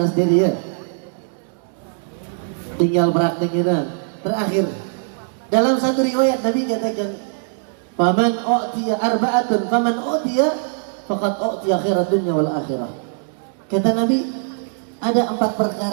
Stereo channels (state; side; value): silent; left; digital silence